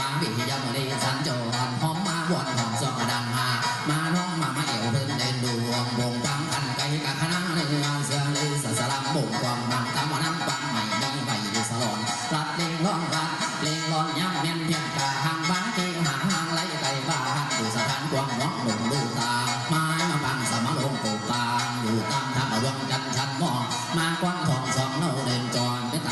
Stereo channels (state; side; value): identical; both; correlation 1.00